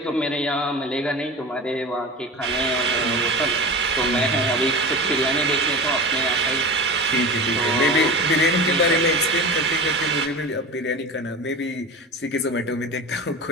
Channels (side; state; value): both; normal; correlation 0.30